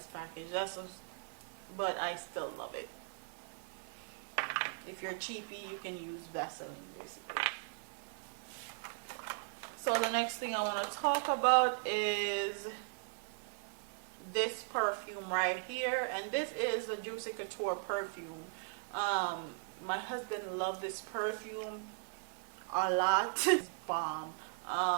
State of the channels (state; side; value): silent; left; digital silence